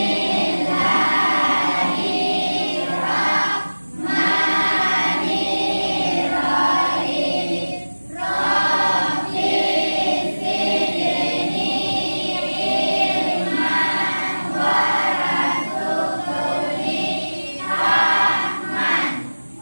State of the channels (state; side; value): inverted; both; correlation -1.00